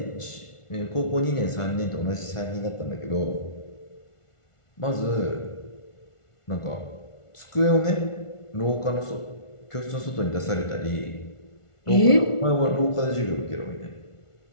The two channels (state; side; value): late; right; 1.4 ms